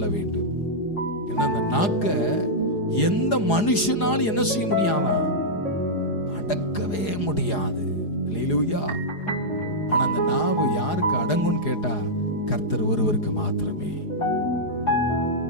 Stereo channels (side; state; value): right; late; 4.8 ms